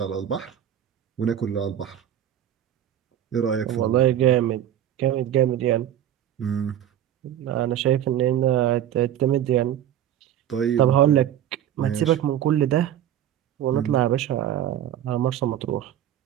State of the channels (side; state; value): left; quieter; 11.0 dB